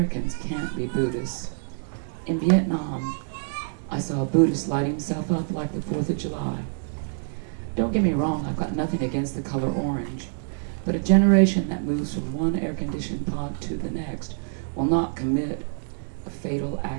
can't be Buddhists. In Vietnam, I saw a Buddhist light himself up like the 4th of July. Don't get me wrong, I've got nothing against the color orange, but a generation that moves from one air-conditioned pod to the next will not commit a fatal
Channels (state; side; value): silent; left; digital silence